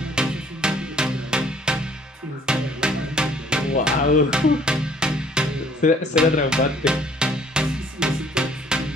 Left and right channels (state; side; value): normal; both; correlation 0.58